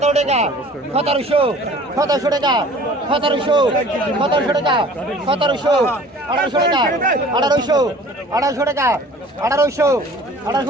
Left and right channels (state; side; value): normal; both; correlation 0.47